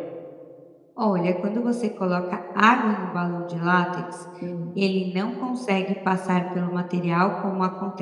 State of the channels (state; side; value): identical; both; correlation 1.00